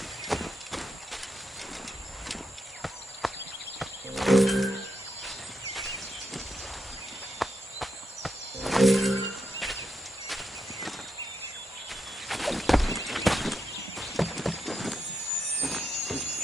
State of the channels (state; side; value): normal; both; correlation 0.83